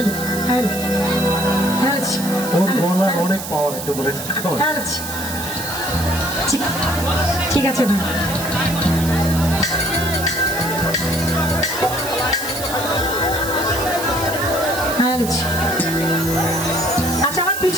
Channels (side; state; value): right; noise; hiss, 8 dB below the sound